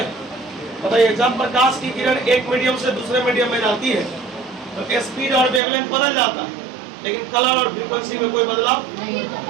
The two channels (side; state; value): left; drops out; at 5.6 s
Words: बताइए, जब प्रकाश की किरण एक मीडियम से दूसरे मीडियम में जाती है तो स्पीड और वेवलेंथ बदल जाता है, लेकिन कलर और फ्रीक्वेंसी में कोई बदलाव नहीं।